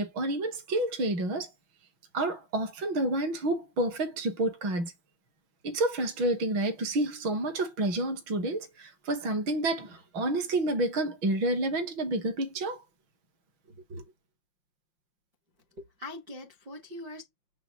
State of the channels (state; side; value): late; left; 5.7 ms